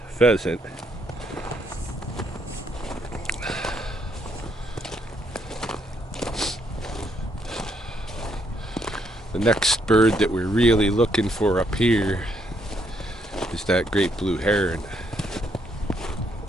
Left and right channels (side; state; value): both; normal; correlation 0.73